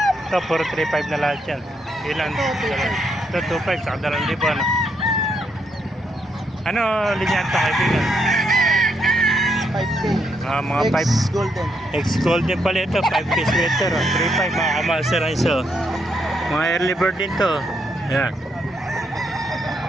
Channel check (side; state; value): both; normal; correlation 0.77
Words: Ito, puro 3.5 na lahat yan. Ilan? Ito, 2.5, saka 2,000. Ano linya ito, kaibigan? 5K. Mga 5. Ex-golden. Ex-golden pala ito, 5K sweater. 3.5, mga kamaster ang iso. Mga early bird din to. Yan.